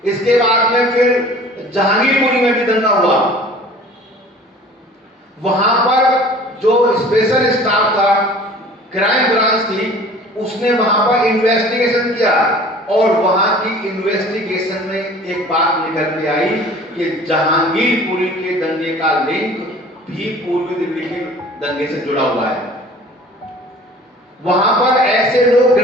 इसके बाद में फिर जहांगीरपुरी में भी दंगा हुआ। वहां पर जो स्पेशल स्टाफ था, क्राइम ब्रांच थी, उसने वहां पर इन्वेस्टिगेशन किया और वहां की इन्वेस्टिगेशन में एक बात निकल के आई कि जहांगीरपुरी के दंगे का लिंक भी पूर्वी दिल्ली के दंगे से जुड़ा हुआ है। वहां पर ऐसे लोग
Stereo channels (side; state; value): both; normal; correlation 0.46